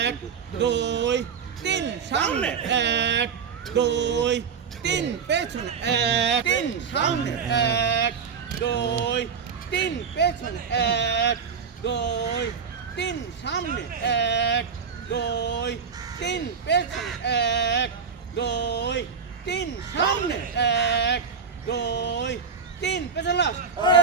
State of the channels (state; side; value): quieter; left; 6.1 dB